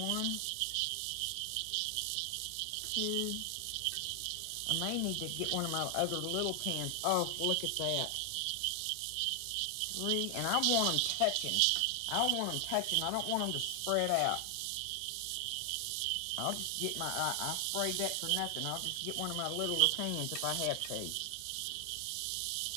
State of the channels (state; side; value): different; both; correlation 0.00